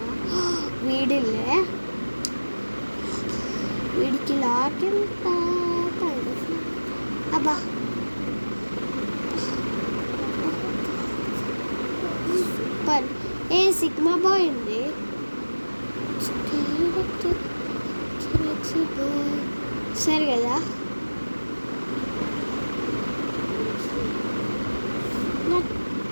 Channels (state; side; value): inverted; both; correlation -1.00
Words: వీడికి లాక్ ఎంత అబ్బా. సూపర్. సిగ్మా బాయ్ ఉంది. సరే కదా, నా